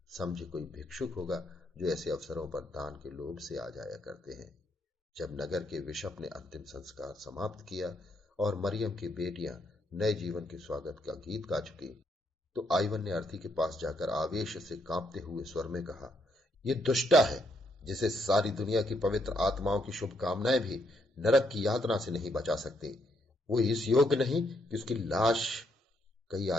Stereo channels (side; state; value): both; normal; correlation 0.75